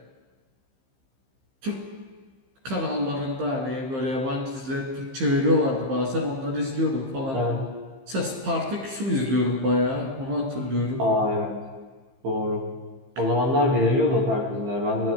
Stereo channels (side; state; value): left; late; 15 ms